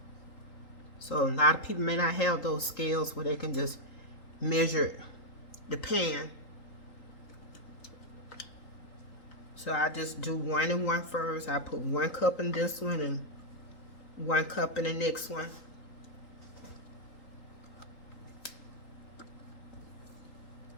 So a lot of people may not have those scales where they can just measure the pan. So I just do 1 and 1 first. I put 1 cup in this one and 1 cup in the next one.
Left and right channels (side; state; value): right; late; 3.8 ms